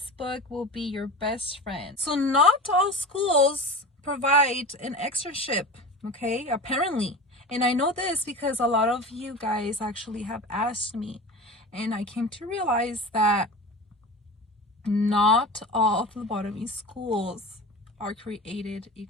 book will be your best friend. So not all schools provide an externship, okay? Apparently. And I know this because a lot of you guys actually have asked me. And I came to realize that not all phlebotomy schools are created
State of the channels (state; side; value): normal; both; correlation 0.32